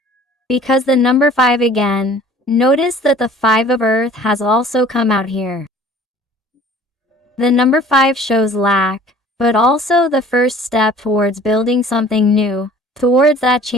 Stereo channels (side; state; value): both; normal; correlation 0.50